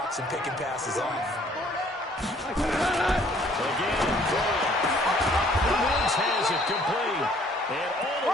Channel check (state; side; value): normal; both; correlation 0.59